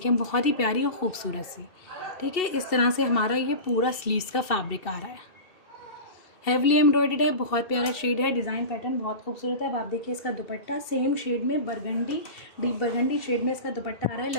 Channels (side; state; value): right; late; 2.7 ms